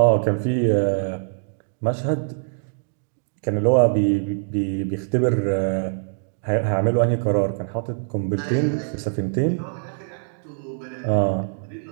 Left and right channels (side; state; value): left; silent; digital silence